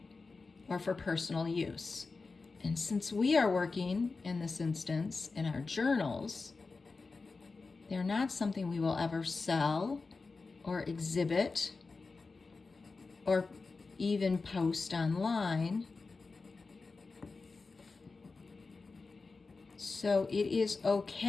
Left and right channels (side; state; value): right; quieter; 4.1 dB